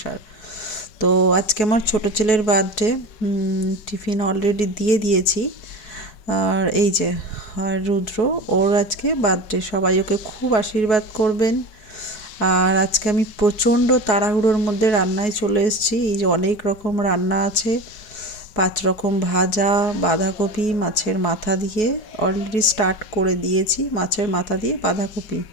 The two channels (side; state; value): right; late; 4.7 ms